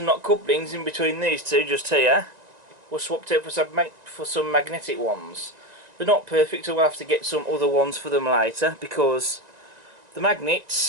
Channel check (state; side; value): late; left; 1.9 ms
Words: lock couplings in between these two just here were swapped out for some magnetic ones. They're not perfect, so we'll have to get some other ones for them later, because the